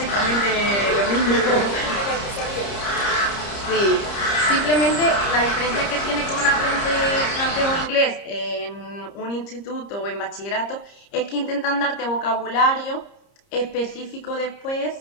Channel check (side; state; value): right; late; 30 ms